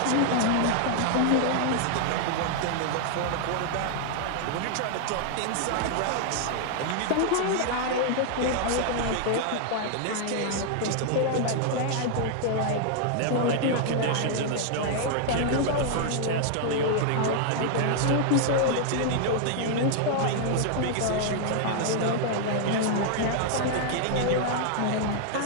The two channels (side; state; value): both; different; correlation 0.00